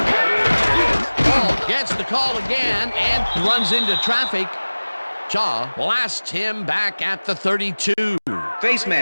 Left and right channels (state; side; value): inverted; both; correlation -1.00